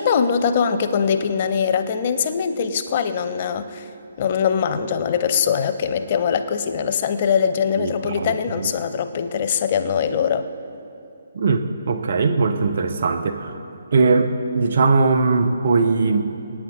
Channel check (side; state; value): both; inverted; correlation -0.69